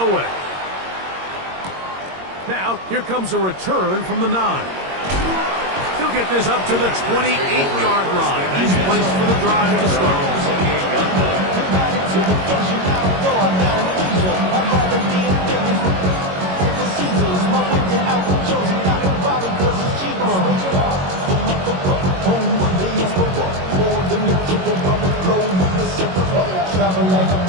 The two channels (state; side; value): late; left; 22 ms